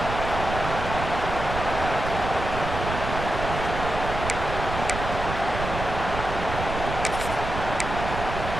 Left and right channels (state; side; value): noise; right; rumble, 5 dB below the sound